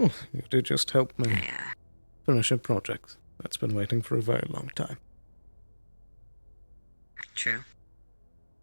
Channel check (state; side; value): inverted; both; correlation -1.00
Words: you did just help me finish a project that's been waiting for a very long time. True.